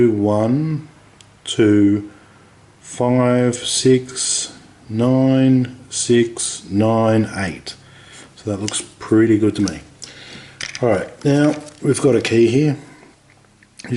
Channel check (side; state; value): both; identical; correlation 1.00